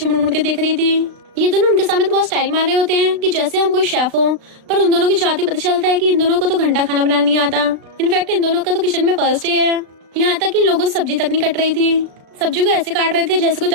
मुड़ मुड़ के देख रही थी। ये दोनों उनके सामने तो बहुत स्टाइल मार रहे होते हैं कि जैसे हम कोई शेफ हो, पर उन दोनों की जाते पता चलता है कि इन दोनों को तो घंटा खाना बनाना नहीं आता। इनफैक्ट इन दोनों का तो किचन में फर्स्ट डे है। यहाँ तक कि इन लोगों को सब्जी तक नहीं कट रही थी, सब्जी को ऐसे काट रहे थे जैसे कोई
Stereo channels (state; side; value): late; left; 36 ms